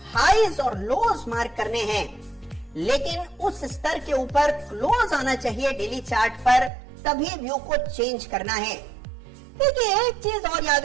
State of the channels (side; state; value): left; drops out; at 6.7 s